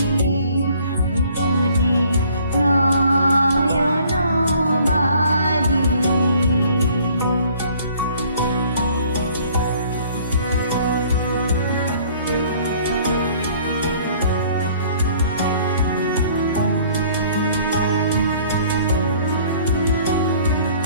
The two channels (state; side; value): inverted; both; correlation -0.56